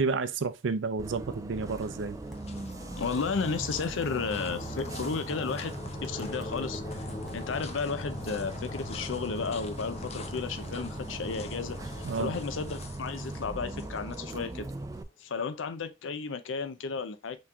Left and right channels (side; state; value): both; normal; correlation 0.16